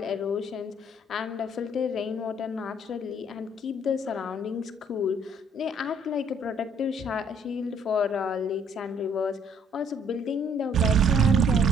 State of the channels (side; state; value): both; normal; correlation 0.63